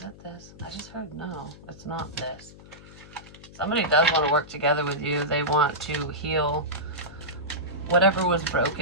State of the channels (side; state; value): left; noise; hum, 19 dB below the sound